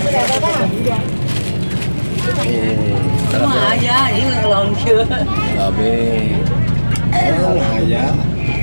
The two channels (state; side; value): inverted; both; correlation -1.00